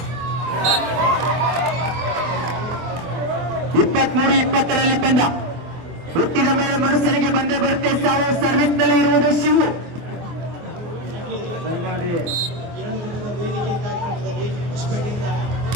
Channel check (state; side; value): late; left; 24 ms